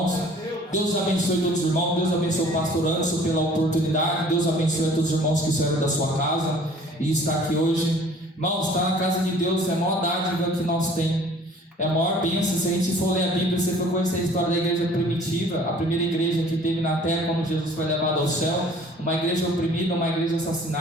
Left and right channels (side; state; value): both; normal; correlation 0.52